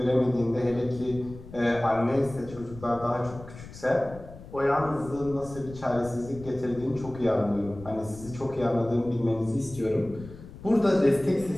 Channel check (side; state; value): left; noise; rumble, 16 dB below the sound